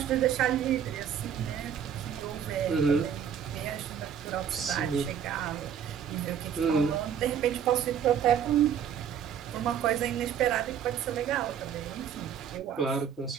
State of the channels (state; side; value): quieter; left; 8.5 dB